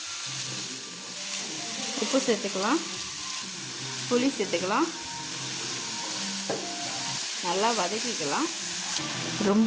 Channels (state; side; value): identical; both; correlation 1.00